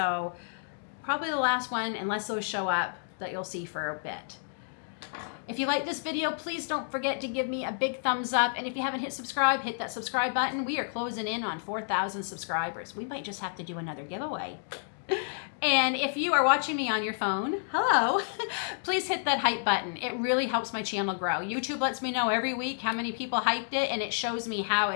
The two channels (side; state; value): right; silent; digital silence